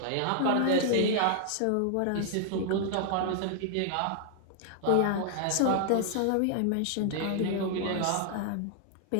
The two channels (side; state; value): both; different; correlation 0.00